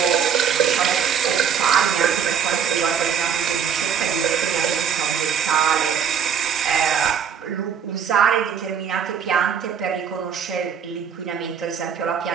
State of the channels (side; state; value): left; quieter; 7.6 dB